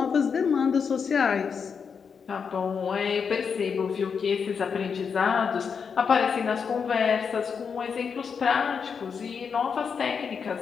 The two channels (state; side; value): quieter; right; 6.2 dB